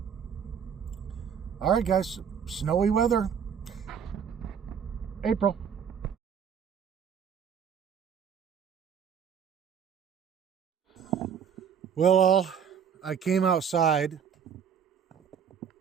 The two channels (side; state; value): left; quieter; 7.6 dB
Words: all right, guys, snowy weather. April. Well, I came outside.